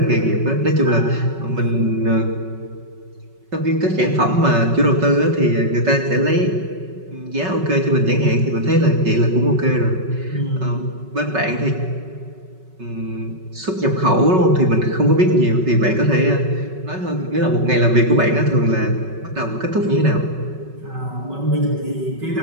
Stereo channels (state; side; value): late; left; 5.3 ms